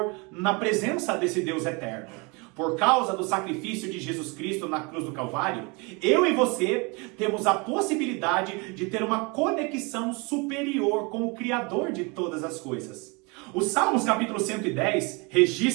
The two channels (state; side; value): quieter; left; 29.2 dB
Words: na presença desse Deus eterno. Por causa do sacrifício de Jesus Cristo na cruz do Calvário, eu e você temos a possibilidade de ter uma conexão superior com o Criador de todas as coisas. O Salmos capítulo 110